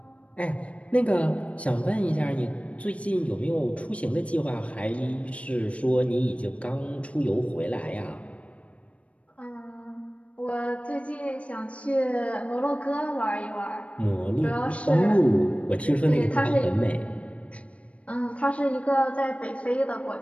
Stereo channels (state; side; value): late; right; 0.063 ms